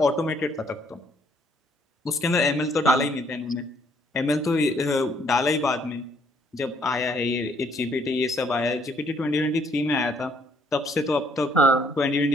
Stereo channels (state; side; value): normal; both; correlation 0.67